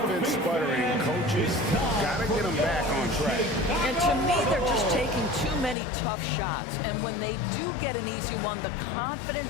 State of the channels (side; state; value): right; drops out; at 5.8 s